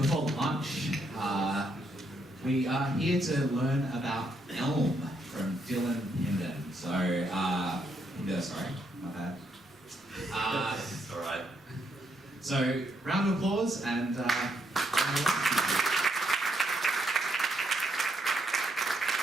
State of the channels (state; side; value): normal; both; correlation 0.76